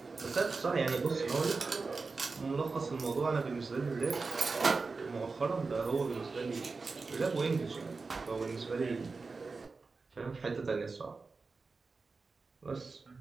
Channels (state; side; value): quieter; left; 4.2 dB